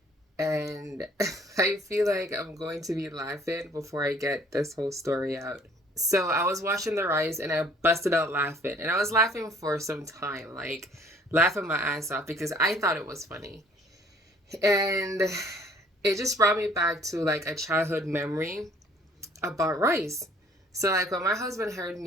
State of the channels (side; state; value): both; normal; correlation 0.57